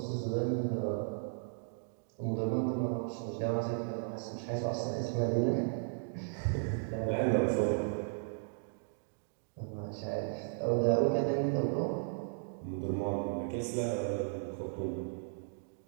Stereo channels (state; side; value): silent; left; digital silence